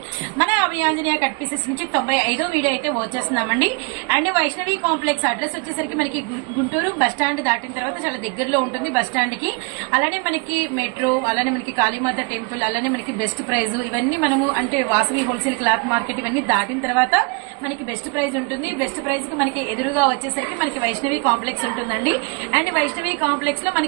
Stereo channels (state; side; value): quieter; left; 31.8 dB